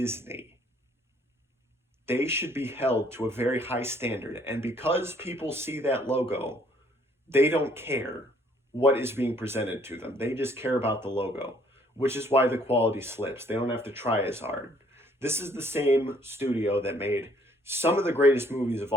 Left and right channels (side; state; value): both; normal; correlation 0.62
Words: They should be held to a very high standard. And because people see that logo, they don't care what is being presented to them. They just care about the logo, which is why the quality slips. They don't have to try as hard. This is the same studio that made some of the greatest movies of